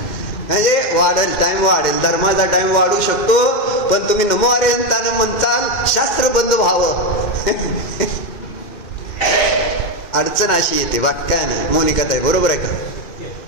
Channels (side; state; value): right; late; 2.1 ms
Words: म्हणजे वाढेल, टाइम वाढेल, धर्माचा टाइम वाढू शकतो, पण तुम्ही नमो अरिहंतान म्हणताल शास्त्र बंद व्हावं. अडचण अशी येते, बाकी काय नाही. मोनिकाताई बरोबर आहे का?